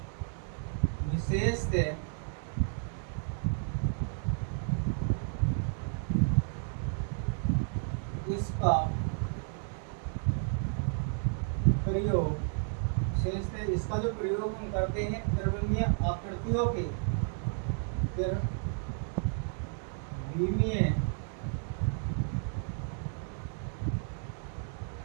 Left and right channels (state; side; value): silent; left; 56 dB below the other